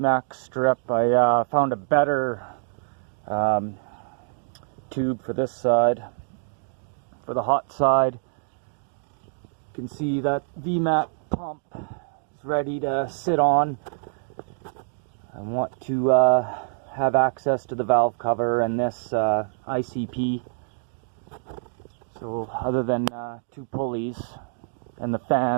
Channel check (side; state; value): left; silent; digital silence